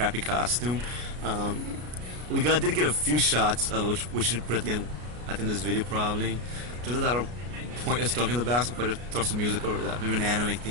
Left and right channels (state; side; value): late; left; 33 ms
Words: costume. We did get a few shots, which we should put at the end of this video probably. Just a lot of pointless talking in the back, so we'll just throw some music over that, maybe an anime